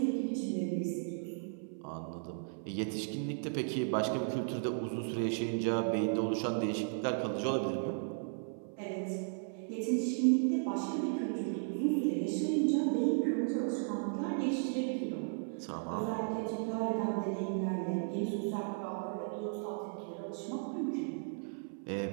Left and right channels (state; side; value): silent; left; 54 dB below the other